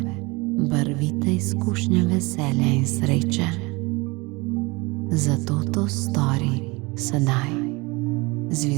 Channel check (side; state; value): left; quieter; 25.0 dB